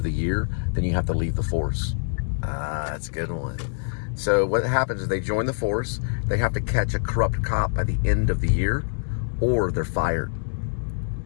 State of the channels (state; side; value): silent; right; digital silence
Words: the year, then you have to leave the force. Ah, that's a good one. So what happens is they join the force, they have to catch a corrupt cop by the end of the year, or they're fired.